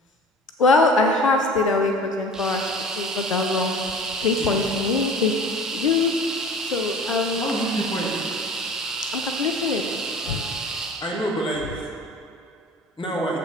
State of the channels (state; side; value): normal; both; correlation 0.42